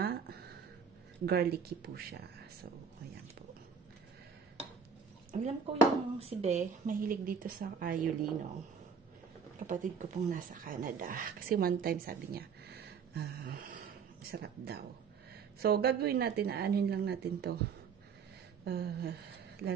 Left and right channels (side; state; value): left; quieter; 6.3 dB